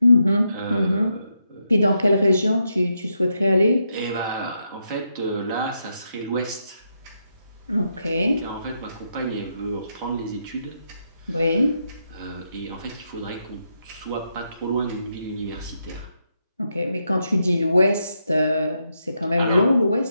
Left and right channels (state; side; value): inverted; both; correlation -0.82